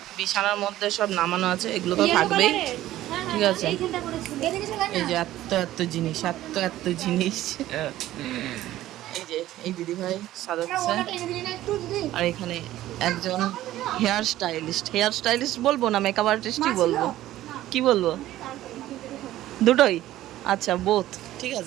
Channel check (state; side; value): quieter; left; 14.4 dB